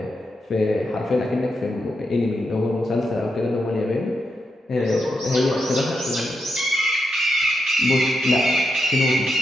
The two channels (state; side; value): normal; both; correlation 0.84